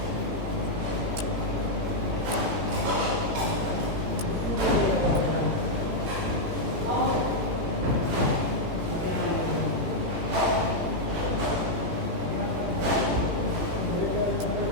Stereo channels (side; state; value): left; late; 18 ms